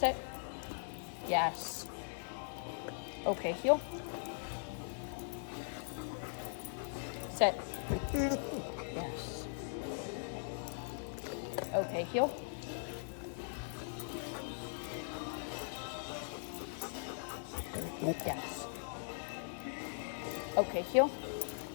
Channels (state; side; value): silent; right; digital silence